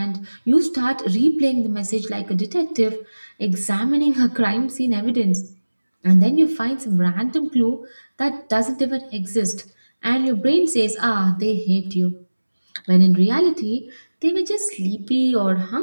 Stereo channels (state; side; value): inverted; both; correlation -1.00